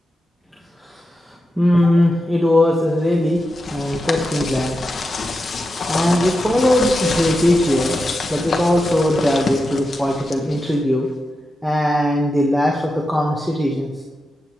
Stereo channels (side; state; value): both; normal; correlation 0.89